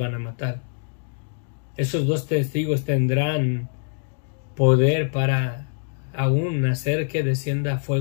a matar. Esos 2 testigos tendrán poder para aún hacer que descienda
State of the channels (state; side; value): silent; right; digital silence